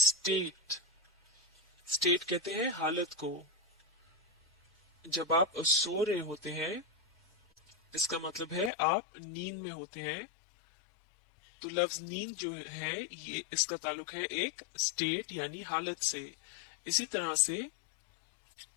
स्टेट कहते हैं हालत को। जब आप सो रहे होते हैं इसका मतलब है आप नींद में होते हैं। तो लफ्ज नींद जो है ये इसका ताल्लुक है एक स्टेट यानी हालत से। इसी तरह से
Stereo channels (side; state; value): right; drops out; at 8.7 s